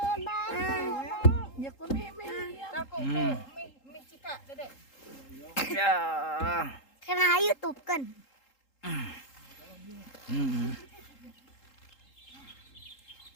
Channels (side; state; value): right; late; 3.8 ms